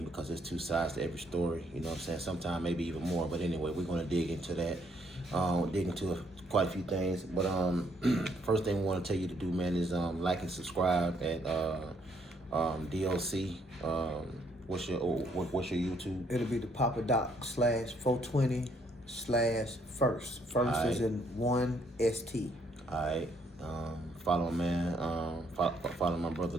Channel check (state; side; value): normal; both; correlation 0.69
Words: because there's two sides to every story, you know what I'm saying. Sometimes maybe even more, but anyway, we're going to dig into that, quite a few things. But first thing we want to tell you to do, man, is like and subscribe at DLC. What's your YouTube? It'll be the Papa Doc /420/first. First is Alright. in 1 ST. Alright. Follow my man. Follow my brother